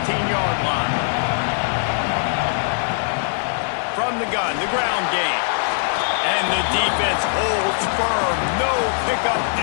line. From the gun, the ground game. And the defense holds firm. No pickup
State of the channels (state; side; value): silent; right; digital silence